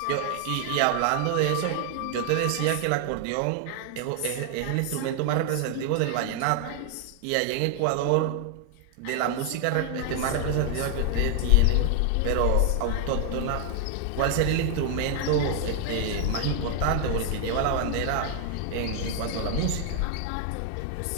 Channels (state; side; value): different; both; correlation 0.00